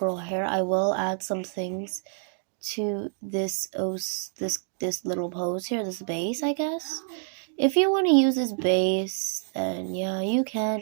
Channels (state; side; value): silent; left; digital silence